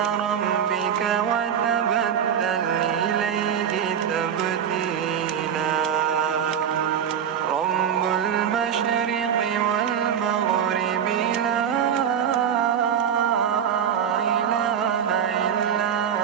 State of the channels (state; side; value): quieter; left; 8.5 dB